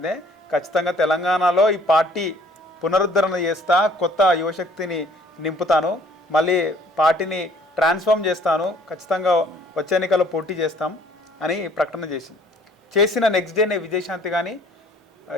ఖచ్చితంగా తెలంగాణలో ఈ పార్టీ పునరుద్ధరణ చేస్తా, కొత్త యువశక్తిని నింపుతాను, మళ్ళీ పార్టీని ట్రాన్స్ఫార్మ్ చేస్తాను, ఖచ్చితంగా వచ్చే ఎన్నికల్లో పోటీ చేస్తాం అని ప్రకటన చేసిన నెక్స్ట్ డేనే విజయశాంతి కానీ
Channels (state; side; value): normal; both; correlation 0.57